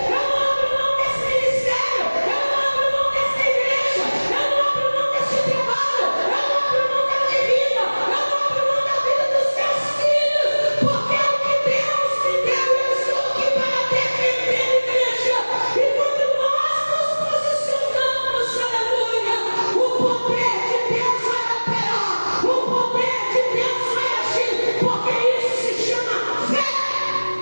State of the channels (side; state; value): both; inverted; correlation -1.00